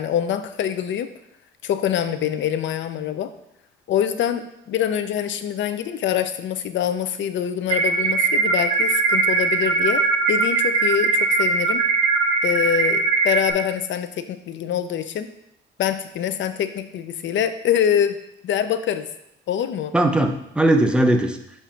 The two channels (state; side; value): normal; both; correlation 0.17